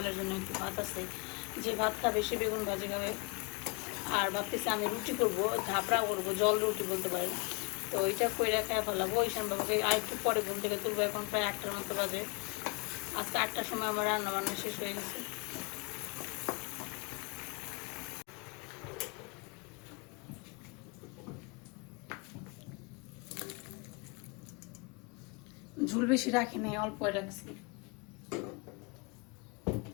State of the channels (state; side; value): quieter; right; 29.2 dB